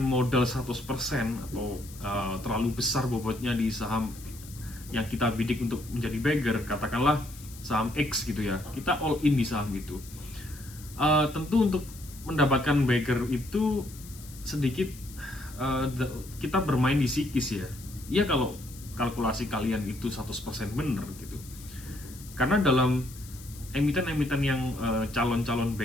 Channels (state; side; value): noise; left; hiss, 18 dB below the sound